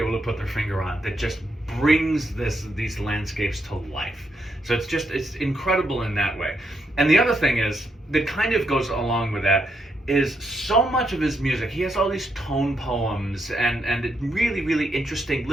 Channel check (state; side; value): normal; both; correlation 0.79